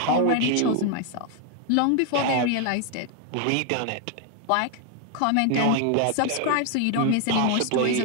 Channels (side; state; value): both; different; correlation 0.00